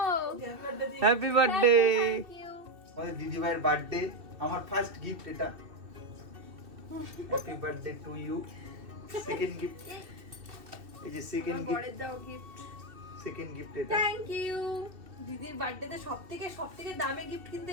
Happy birthday. আমাদের দিদি ভাইয়ের বার্থডে, আমার ফার্স্ট গিফট এটা। Happy birthday to you. Second gift, এই যে সেকেন্ড গিফট, বড়ের দাও গিফট। সেকেন্ড গিফট এটা। Thank you. দিদির বার্থডেতে সবথেকে দামি গিফট কিন্তু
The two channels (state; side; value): late; left; 2.6 ms